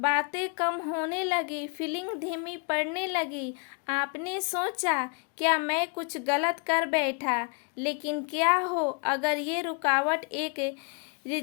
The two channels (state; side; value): quieter; right; 35.4 dB